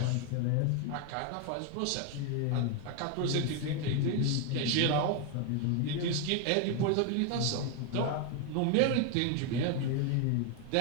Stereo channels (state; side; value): different; both; correlation 0.01